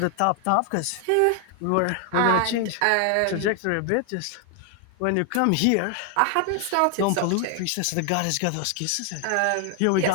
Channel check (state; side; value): different; both; correlation 0.00